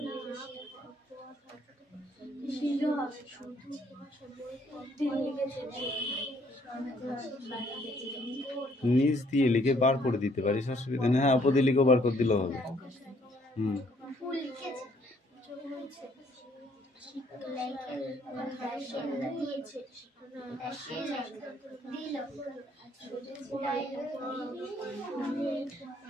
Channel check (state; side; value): normal; both; correlation 0.65